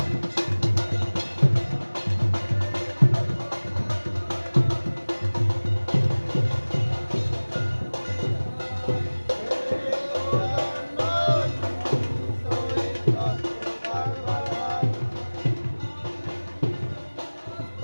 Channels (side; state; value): both; inverted; correlation -1.00